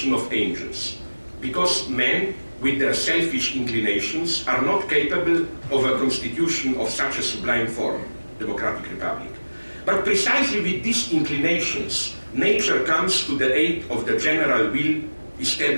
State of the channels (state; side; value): inverted; both; correlation -1.00